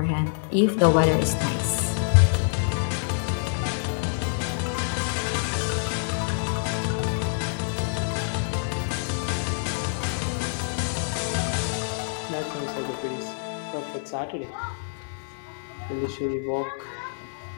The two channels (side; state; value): right; silent; digital silence